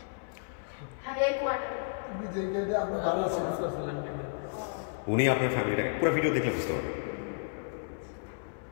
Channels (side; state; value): right; silent; 56 dB below the other